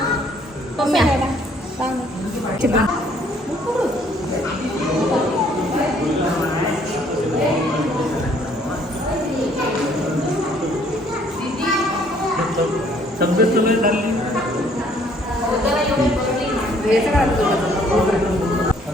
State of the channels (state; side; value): normal; both; correlation 0.62